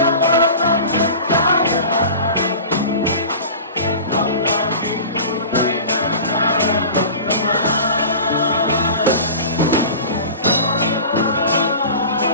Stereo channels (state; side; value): inverted; both; correlation -0.37